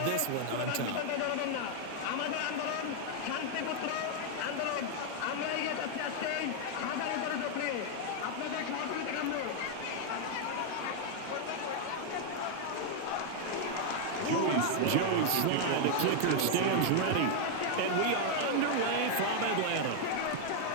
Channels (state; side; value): different; both; correlation 0.00